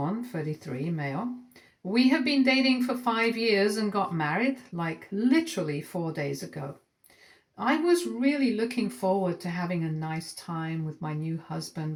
33 male. We have been dating for 5 years and got married like literally 4 days ago. I was really looking forward to having a nice time with my new husband,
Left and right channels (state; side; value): identical; both; correlation 1.00